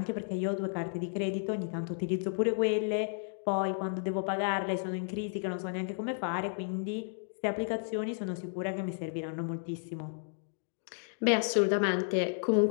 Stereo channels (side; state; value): right; silent; digital silence